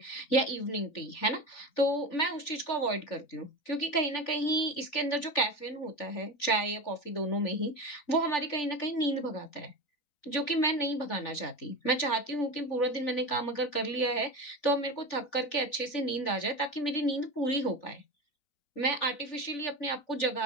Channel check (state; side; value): late; right; 3.4 ms